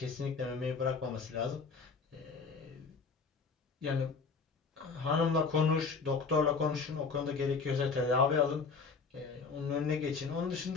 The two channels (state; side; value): quieter; right; 4.9 dB